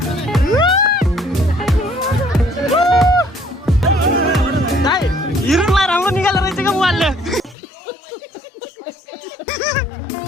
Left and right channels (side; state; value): right; drops out; at 7.6 s